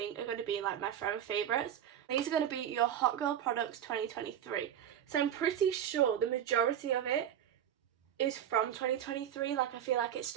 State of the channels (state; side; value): quieter; left; 10.0 dB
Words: are going to be like my forever favourites. These are going to be your Hot Girl Products 2023. So I'm pretty sure the majority of it is from 2023. Like, I feel like it's